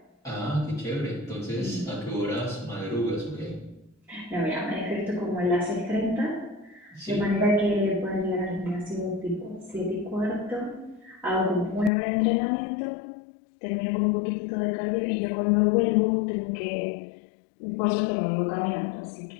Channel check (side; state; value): right; drops out; at 11.9 s